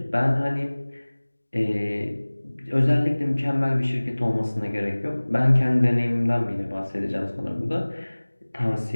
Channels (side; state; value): both; inverted; correlation -1.00